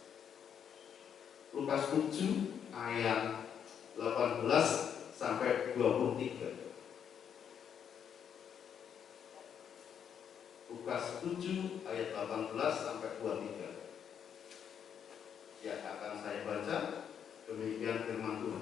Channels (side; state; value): right; quieter; 8.2 dB